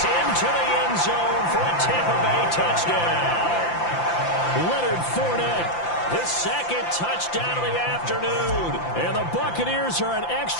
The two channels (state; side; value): late; right; 5.8 ms